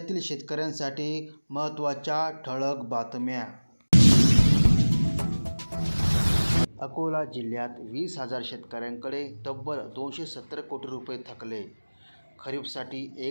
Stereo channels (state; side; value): inverted; both; correlation -1.00